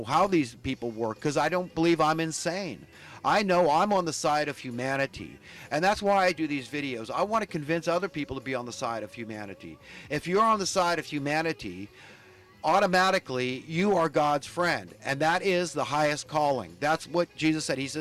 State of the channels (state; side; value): identical; both; correlation 1.00